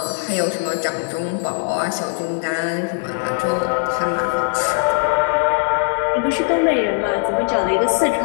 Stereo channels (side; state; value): right; silent; digital silence